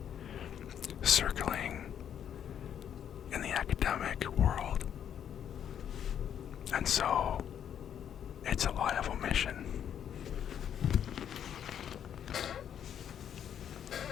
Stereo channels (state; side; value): quieter; right; 9.1 dB